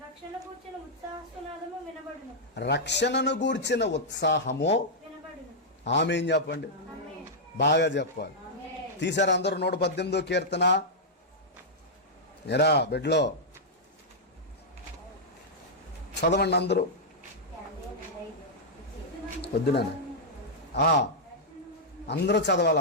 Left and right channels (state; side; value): normal; both; correlation -0.07